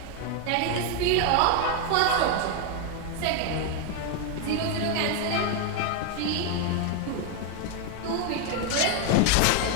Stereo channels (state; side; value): different; both; correlation 0.01